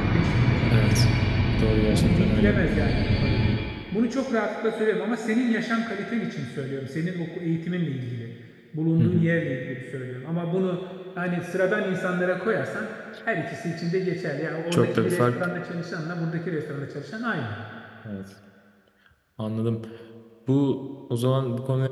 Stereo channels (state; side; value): identical; both; correlation 1.00